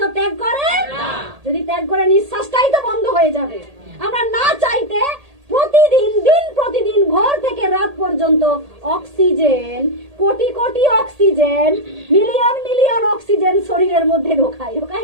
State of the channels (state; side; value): late; left; 1.8 ms